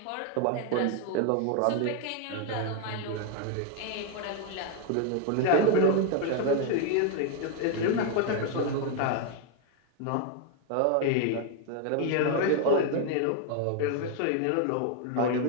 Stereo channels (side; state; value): both; different; correlation 0.01